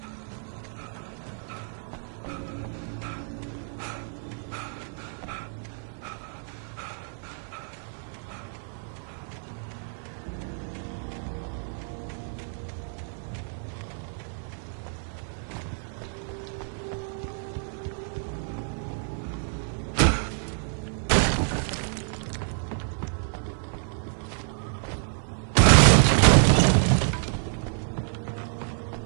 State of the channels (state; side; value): silent; left; 59 dB below the other